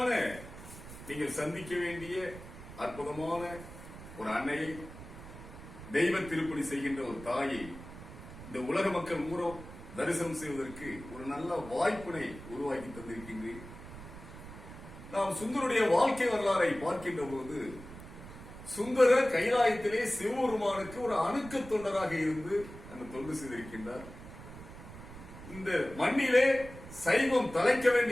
நீங்கள் சந்திக்க வேண்டிய அற்புதமான ஒரு அன்னையை, தெய்வ திருப்பணி செய்கின்ற ஒரு தாயை இந்த உலக மக்கள் மூலம் தரிசனம் செய்வதற்கு ஒரு நல்ல வாய்ப்பினை உருவாக்கி தந்திருக்கின்றேன். நாம் சுந்தருடைய வாழ்க்கை வரலாறை பார்க்கின்ற போது, சுந்தரர் கைலாயத்திலே சிவபெருமானுக்கு ஒரு அணுக்க தொண்டராக இருந்து அந்த தொண்டு செய்திருக்கின்றார். இந்த மண்ணிலே சைவம் தலைக்க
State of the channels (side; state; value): right; noise; rumble, 14 dB below the sound